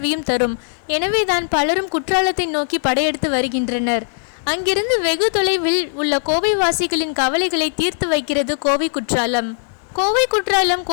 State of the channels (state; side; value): silent; right; 67 dB below the other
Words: தரும். எனவேதான் பலரும் குற்றாலத்தை நோக்கி படையெடுத்து வருகின்றனர். அங்கிருந்து வெகு தொலைவில் உள்ள கோவை வாசிகளின் கவலைகளை தீர்த்து வைக்கிறது கோவை குற்றாலம். கோவை குற்றாலம்